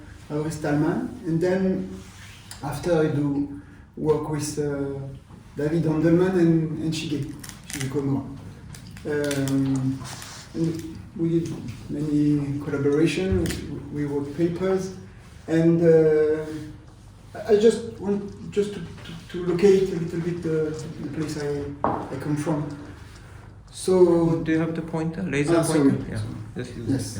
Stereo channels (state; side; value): identical; both; correlation 1.00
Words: Auris Talman, and then after I do work with David Handelman and Shige Komura. And we did many collaboration, we wrote papers, and I just want to locate a little bit the place I come from. So do you have the pointer, laser pointer? Sorry. Yeah. Yes.